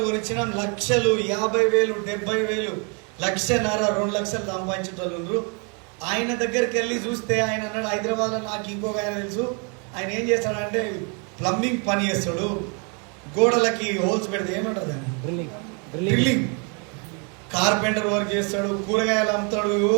కొనిచ్చినాం. లక్షలు, 50,000, 70,000, 1,50,000, 2 లక్షలు సంపాదించేటోళ్ళు. ఆయన దగ్గరికి వెళ్ళి చూస్తే ఆయన అన్నాడు, హైదరాబాద్లో నాకు ఇంకొక ఆయన తెలుసు, ఆయన ఏం చేస్తాడంటే ప్లంబింగ్ పని చేస్తాడు, గోడలకి హోల్స్ పెడితే ఏమంటారు దాన్ని డ్రిల్లింగ్, కార్పెంటర్ వర్క్ చేస్తాడు, కూరగాయలు అమ్ముతాడు,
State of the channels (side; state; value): left; quieter; 35.8 dB